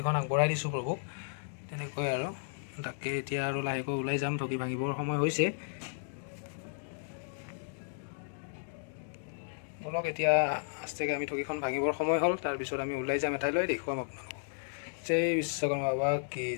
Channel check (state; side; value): silent; right; digital silence